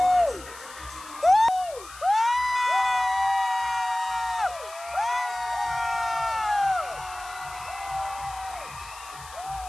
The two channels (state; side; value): noise; left; hiss, 17 dB below the sound